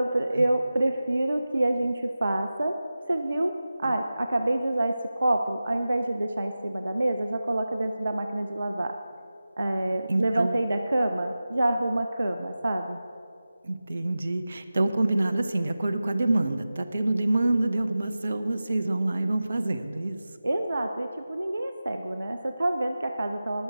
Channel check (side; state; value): both; inverted; correlation -0.95